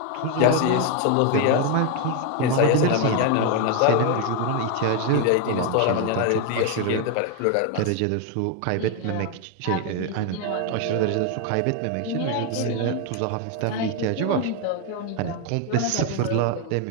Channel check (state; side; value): different; both; correlation 0.01